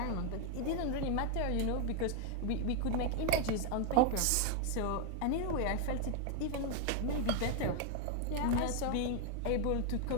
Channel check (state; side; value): different; both; correlation 0.01